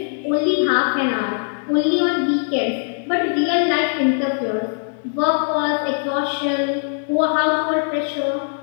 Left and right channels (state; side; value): silent; right; 65 dB below the other